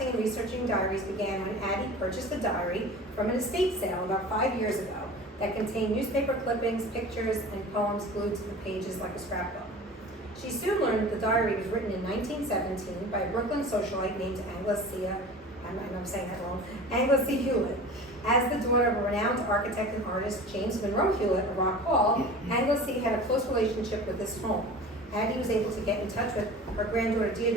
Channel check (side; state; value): both; normal; correlation 0.38